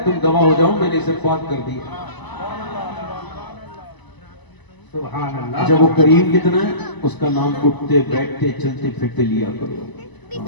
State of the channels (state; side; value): late; right; 1.0 ms